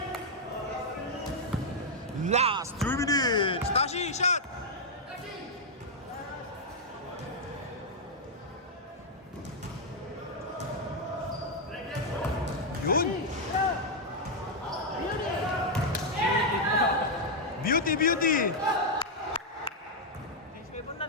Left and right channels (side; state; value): both; normal; correlation -0.02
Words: Last 3 minutes. Tashi, shot. Yun. Beauty. Change favor na,